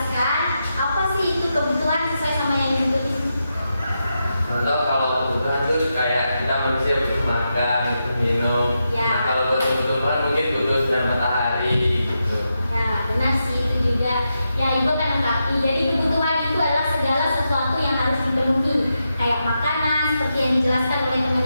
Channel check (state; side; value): inverted; both; correlation -0.86